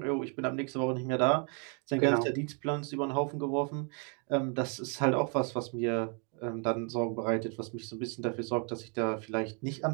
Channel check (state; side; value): quieter; left; 38.1 dB